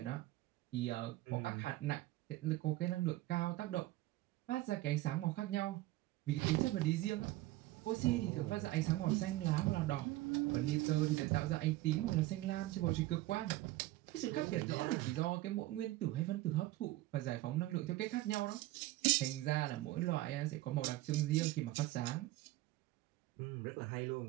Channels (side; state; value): left; quieter; 17.5 dB